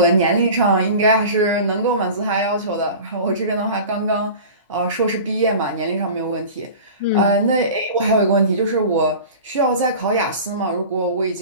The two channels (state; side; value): inverted; both; correlation -0.37